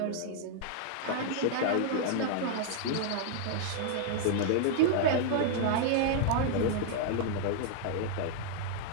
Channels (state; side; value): different; both; correlation -0.01